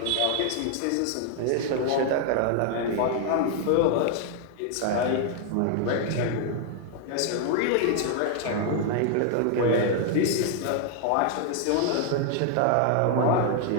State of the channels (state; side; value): different; both; correlation 0.00